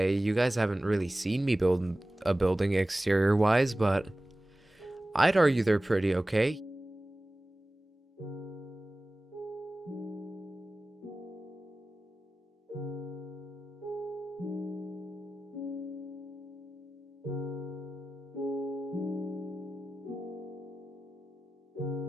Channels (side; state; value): both; normal; correlation 0.96